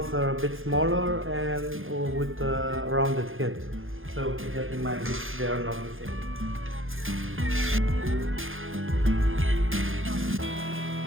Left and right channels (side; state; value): left; late; 0.59 ms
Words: are a bit smaller and with a rounded head. So keep that in mind if they are not the same.